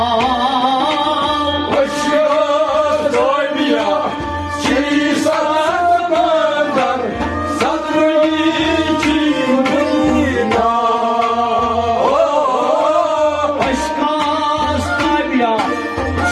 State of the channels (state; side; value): identical; both; correlation 1.00